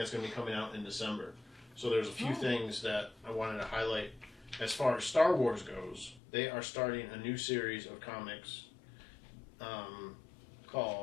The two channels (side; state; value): right; drops out; at 6.2 s